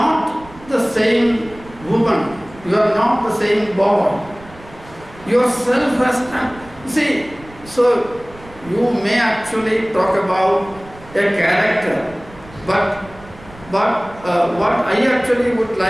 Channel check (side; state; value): right; noise; rumble, 21 dB below the sound